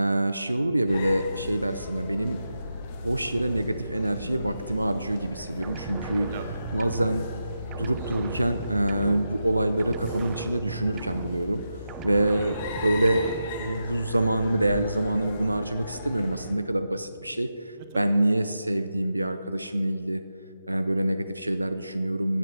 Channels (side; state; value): both; inverted; correlation -0.88